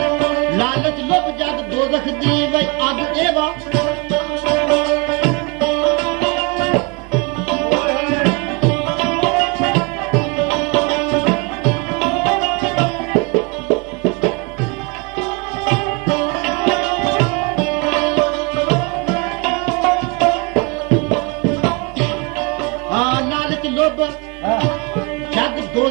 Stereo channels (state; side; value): quieter; left; 29.5 dB